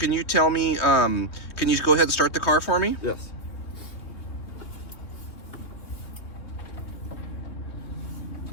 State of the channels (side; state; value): right; late; 3.2 ms